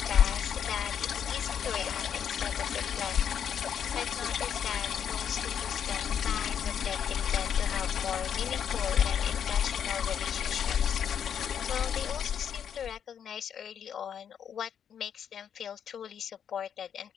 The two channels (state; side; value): quieter; right; 8.4 dB